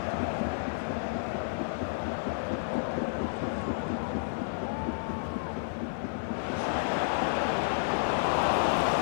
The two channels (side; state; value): right; silent; 57 dB below the other